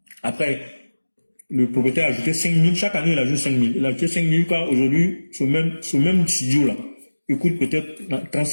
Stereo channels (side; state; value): both; inverted; correlation -1.00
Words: Après, le propriétaire a ajouté 5 000. Chaque année, il ajoute 5 000. Il a ajouté 5 000 car aujourd'hui, ce même studio-là, il coûte peut-être